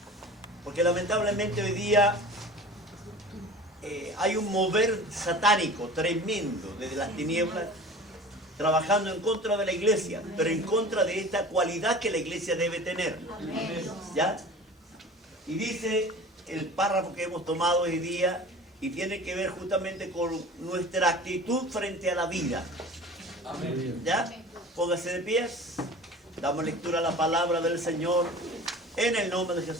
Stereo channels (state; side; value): normal; both; correlation 0.39